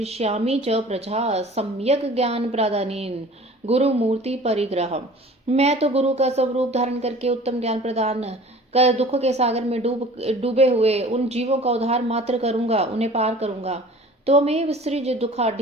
च प्रजा सम्यक ज्ञान प्रदानेन गुरु मूर्ति परिग्रह। मैं तो गुरु का स्वरूप धारण करके उत्तम ज्ञान प्रदान कर दुख के सागर में डूबे हुए उन जीवों का उद्धार मात्र करूंगा, उन्हें पार करूंगा। त्वमेव सृज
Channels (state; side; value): normal; both; correlation 0.45